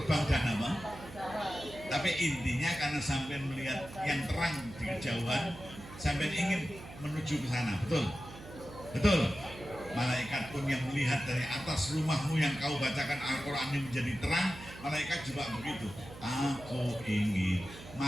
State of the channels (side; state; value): right; noise; hum, 15 dB below the sound